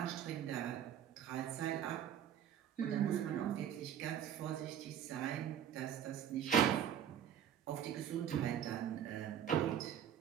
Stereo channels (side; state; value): left; quieter; 9.4 dB